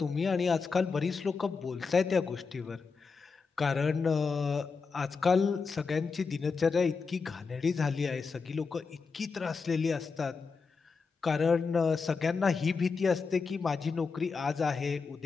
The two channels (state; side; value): quieter; right; 4.9 dB